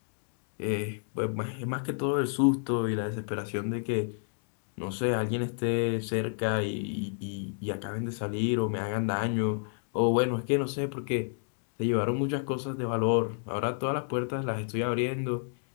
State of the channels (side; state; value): right; silent; digital silence